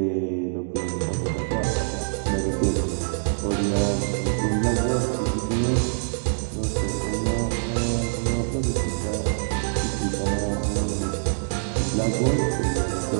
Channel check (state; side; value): silent; left; digital silence